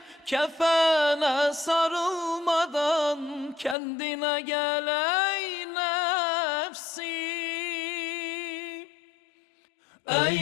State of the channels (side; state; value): right; drops out; at 3.8 s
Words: Kefene sarılmadan kendine gel ey nefsim.